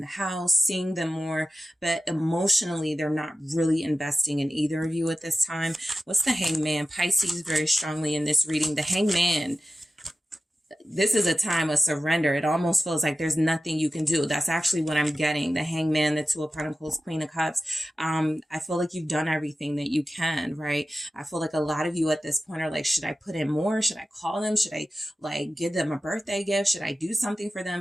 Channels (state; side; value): normal; both; correlation 0.93